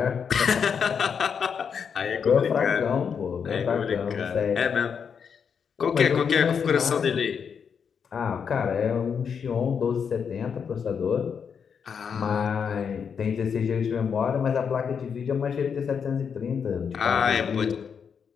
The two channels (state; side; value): quieter; right; 6.8 dB